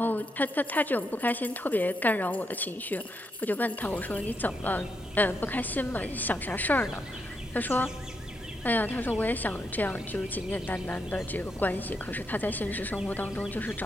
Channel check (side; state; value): both; normal; correlation 0.80